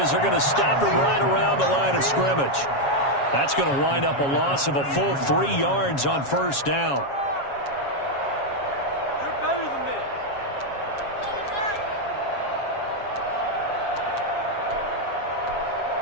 they're going to stop him right around the line of scrimmage. That's going to wind up a loss of a full 3 yards on 1st down. You're better than this.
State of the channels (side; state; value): right; late; 7.3 ms